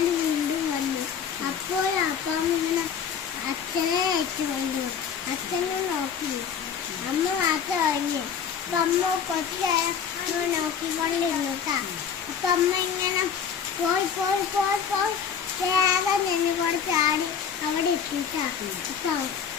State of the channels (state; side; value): quieter; right; 7.3 dB